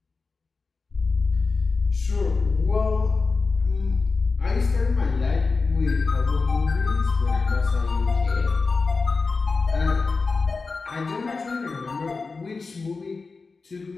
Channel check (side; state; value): right; quieter; 4.2 dB